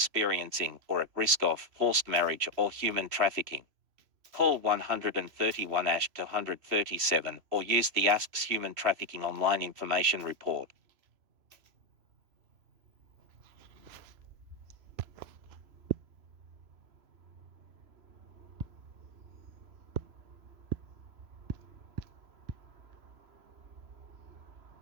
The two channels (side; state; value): left; late; 3.0 ms